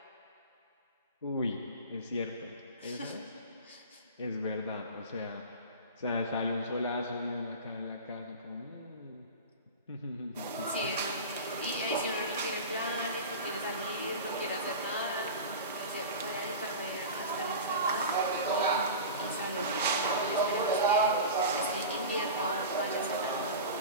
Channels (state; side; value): inverted; both; correlation -0.30